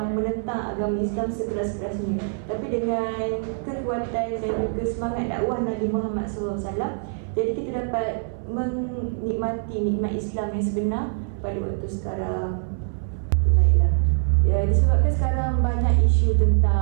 menentang agama Islam sekeras-kerasnya. Tapi dengan kekuatan dan juga semangat dakwah Nabi Muhammad SAW, jadi kita dapat menikmati nikmat Islam yang sebenar pada waktu sekarang. Baiklah. Ya, disebabkan sekarang banyak isu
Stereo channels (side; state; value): left; silent; 62 dB below the other